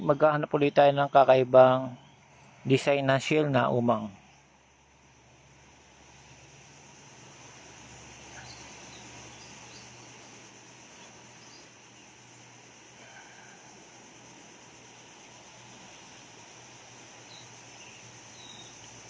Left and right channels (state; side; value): identical; both; correlation 1.00